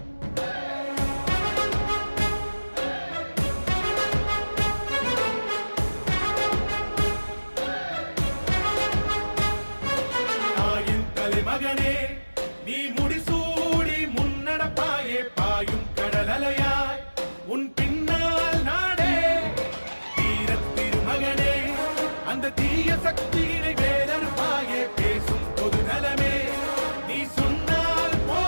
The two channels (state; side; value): inverted; both; correlation -1.00